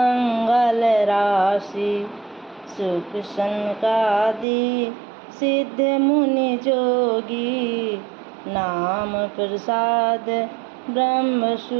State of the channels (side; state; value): left; drops out; at 4.5 s